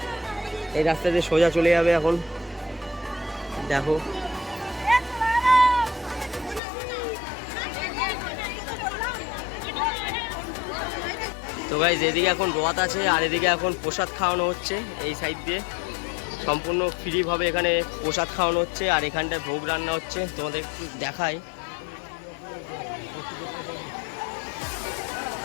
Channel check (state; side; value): drops out; right; at 6.6 s